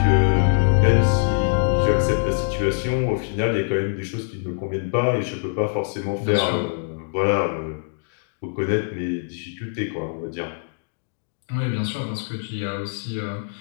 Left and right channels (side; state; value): right; silent; digital silence